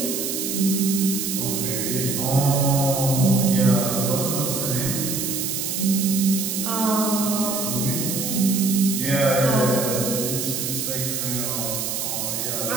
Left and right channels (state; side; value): noise; right; hiss, 2 dB below the sound